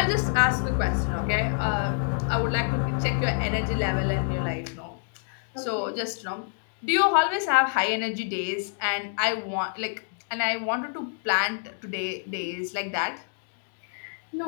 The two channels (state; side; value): silent; right; digital silence